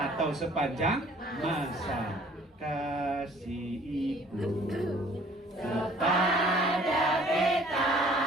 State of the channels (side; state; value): both; normal; correlation 0.54